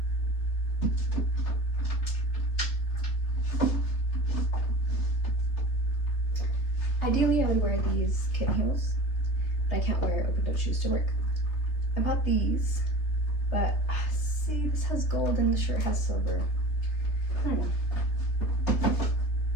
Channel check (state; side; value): late; right; 3.4 ms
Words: Ideally, I would wear these kitten heels, but I can't wear open-toed shoes to work. I bought these, but see, this has gold and the shirt has silver. I don't know.